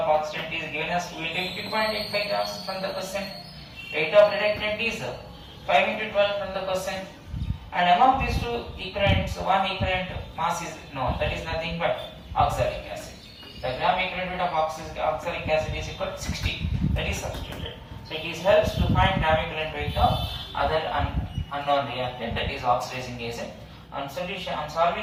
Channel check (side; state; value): both; identical; correlation 1.00